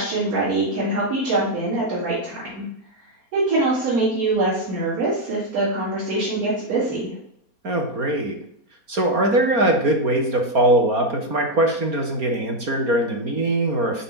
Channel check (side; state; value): left; late; 4.3 ms